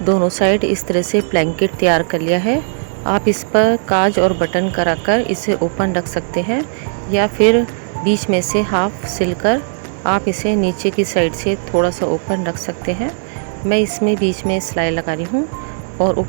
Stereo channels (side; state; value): left; silent; digital silence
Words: दोनों साइड इस तरह से ब्लैंकेट तैयार कर लिया है। आप इस पर काज और बटन कराकर इसे ओपन रख सकते हैं या फिर बीच में से हाफ सिलकर आप इसे नीचे की साइड से थोड़ा सा ओपन रख सकते हैं। मैं इसमें बीच में सिलाई लगा रही हूँ और